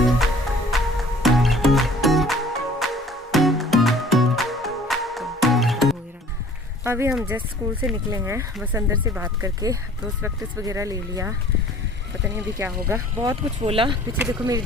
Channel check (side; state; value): both; normal; correlation 0.51